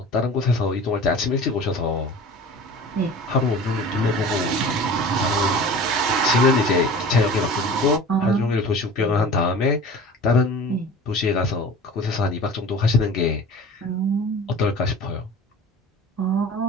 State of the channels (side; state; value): both; normal; correlation 0.39